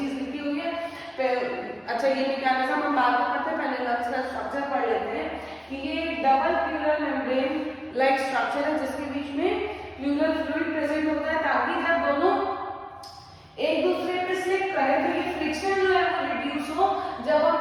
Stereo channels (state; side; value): identical; both; correlation 1.00